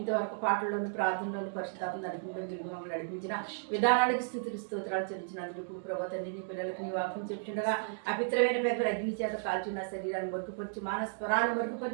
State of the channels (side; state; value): left; silent; digital silence